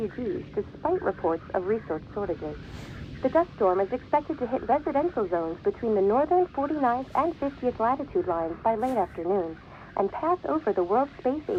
despite reports of resource shortages. The dust storm is expected to hit residential zones between the northern 49th and 50th latitude lines by late afternoon and pass over the World Space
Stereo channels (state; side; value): identical; both; correlation 1.00